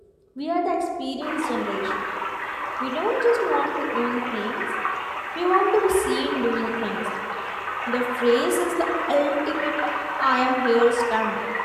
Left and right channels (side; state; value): both; identical; correlation 1.00